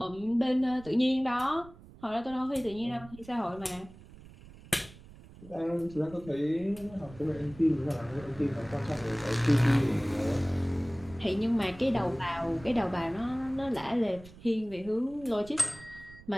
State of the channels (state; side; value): noise; right; rumble, 20 dB below the sound